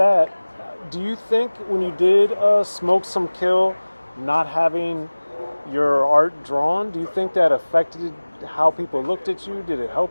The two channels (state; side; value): inverted; both; correlation -1.00